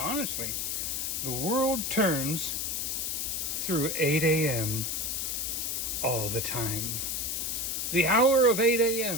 the world turns through 8 a.m. all the time. The hour of 8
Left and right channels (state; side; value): noise; left; hiss, 1 dB below the sound